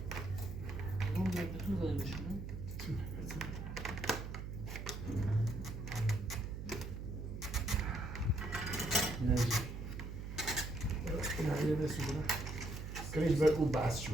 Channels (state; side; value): noise; right; hum, 7 dB below the sound